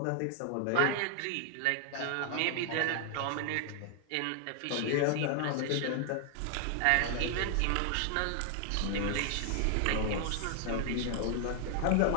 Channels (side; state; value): both; different; correlation 0.00